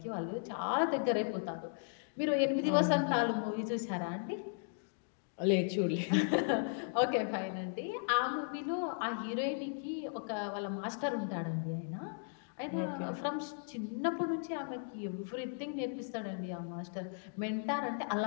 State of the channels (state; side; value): silent; right; digital silence